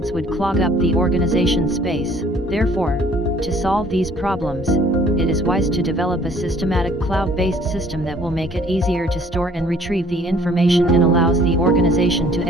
would clog up the organization space. Therefore, to solve these problems, it is wise to develop a systematic cloud-based system that will make it easier to store and retrieve the information and allows the organization to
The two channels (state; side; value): normal; both; correlation 0.57